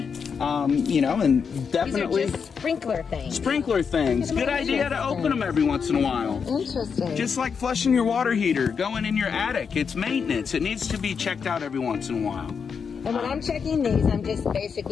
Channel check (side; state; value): right; quieter; 6.2 dB